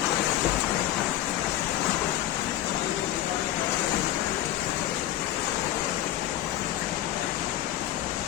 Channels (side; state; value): right; quieter; 13.4 dB